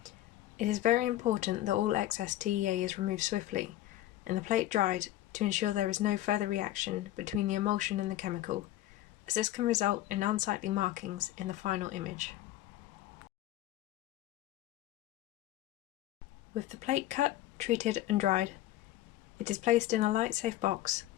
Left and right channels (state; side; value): quieter; right; 14.5 dB